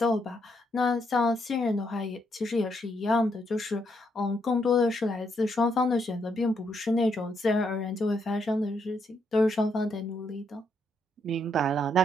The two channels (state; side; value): normal; both; correlation 0.76